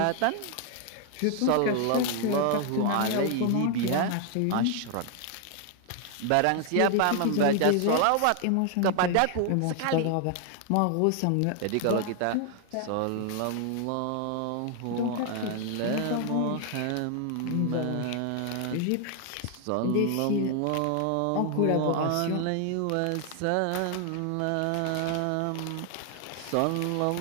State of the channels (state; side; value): different; both; correlation 0.00